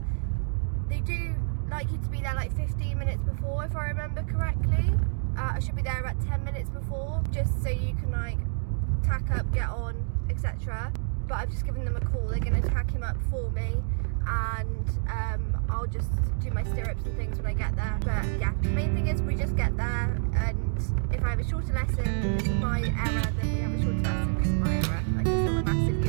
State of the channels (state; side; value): silent; left; digital silence